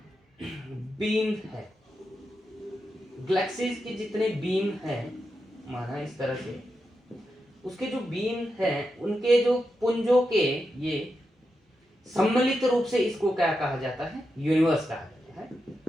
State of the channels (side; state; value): both; normal; correlation 0.87